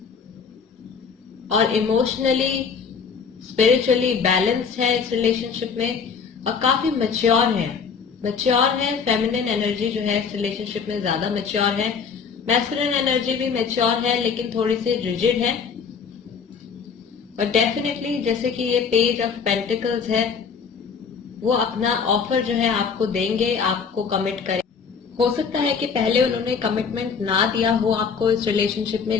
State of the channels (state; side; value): quieter; right; 6.0 dB